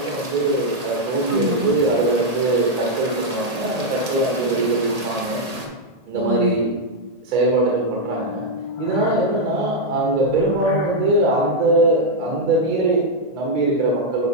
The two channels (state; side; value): late; left; 1.8 ms